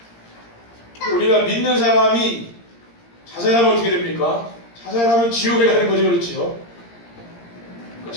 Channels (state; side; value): late; right; 17 ms